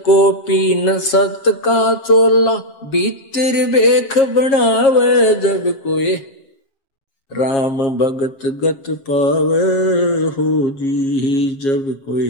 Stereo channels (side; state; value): right; late; 7.4 ms